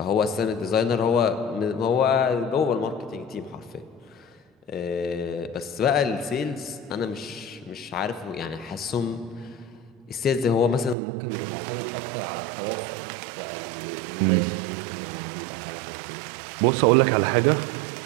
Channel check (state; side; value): drops out; left; at 11.0 s